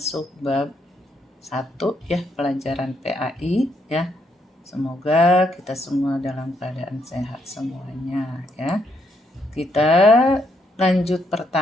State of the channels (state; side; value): normal; both; correlation 0.75